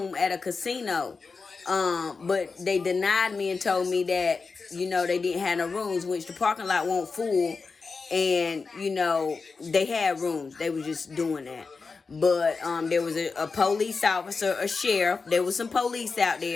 at a casino. But they denied me and told me that, they didn't have no rooms, which the parking lot won't full. And, they had rooms. They were just doing that. But there was a police officer, a sheriff. There was some police out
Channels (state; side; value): quieter; right; 4.6 dB